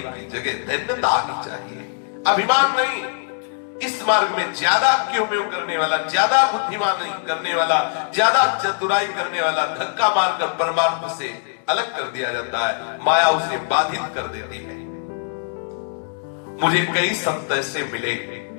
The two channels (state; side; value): silent; right; 64 dB below the other